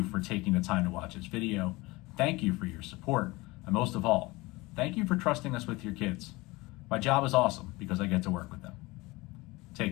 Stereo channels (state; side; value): quieter; right; 22.3 dB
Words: for taking the time to watch this video. Thank you for your support, and most of all, thank you for trusting us with your kids. My job is awesome because I get to work with them.